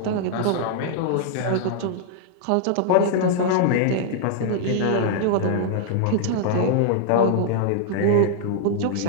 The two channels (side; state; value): both; different; correlation -0.01